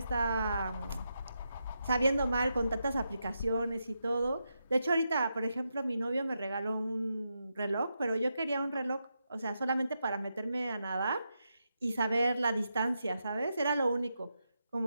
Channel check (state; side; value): inverted; both; correlation -0.85